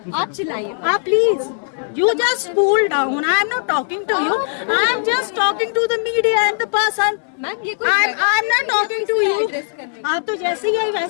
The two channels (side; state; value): right; silent; digital silence